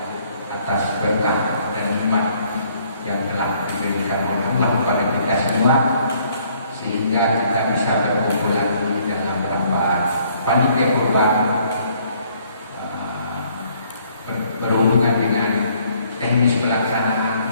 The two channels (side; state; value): both; inverted; correlation -0.63